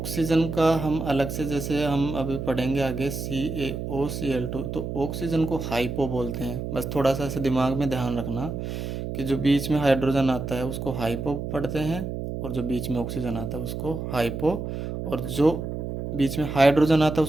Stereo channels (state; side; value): noise; right; hum, 5 dB below the sound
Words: का हम अलग से, जैसे हम अभी पढ़ेंगे आगे CaOCl2, तो ऑक्सीजन को हाइपो बोलते हैं। बस थोड़ा सा ऐसे दिमाग में ध्यान रखना कि जो बीच में हाइड्रोजन आता है उसको हाइपो पढ़ते हैं, और जो बीच में ऑक्सीजन आता है उसको हाइपो, और जो बीच में हाइड्रोजन आता है